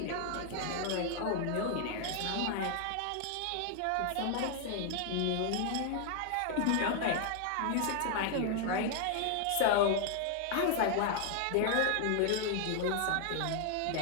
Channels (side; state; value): both; different; correlation 0.00